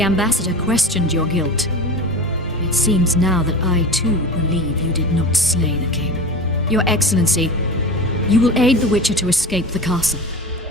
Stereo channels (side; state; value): both; normal; correlation 0.31